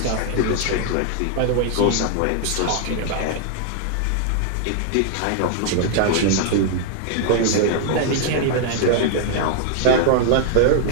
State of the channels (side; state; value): both; different; correlation 0.00